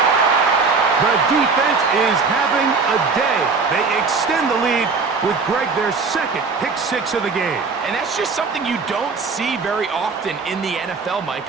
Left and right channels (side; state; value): left; quieter; 4.6 dB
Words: The defense is having a day. They extend the lead with Greg, their 2nd pick 6 of the game. And that's just something you don't see very often in the NFL, Mike.